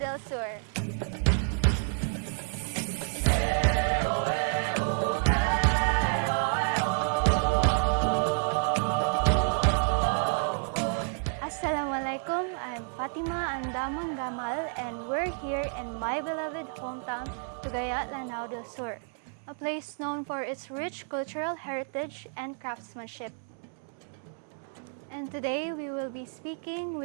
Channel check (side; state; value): left; silent; 58 dB below the other